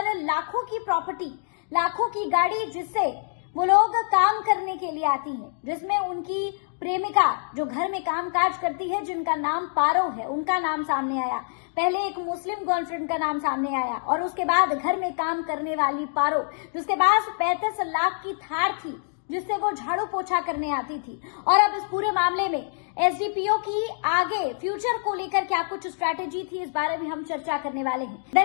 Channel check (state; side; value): silent; right; digital silence